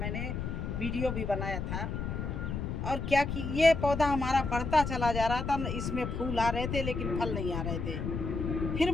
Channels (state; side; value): noise; left; rumble, 3 dB below the sound